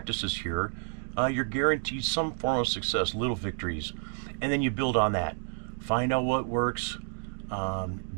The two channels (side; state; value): left; silent; digital silence